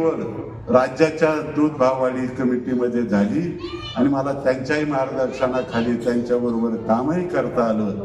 राज्याच्या दूध भाववाढी कमिटीमध्ये झाली आणि मला त्यांच्याही मार्गदर्शनाखाली त्यांच्याबरोबर कामही करता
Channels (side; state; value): both; identical; correlation 1.00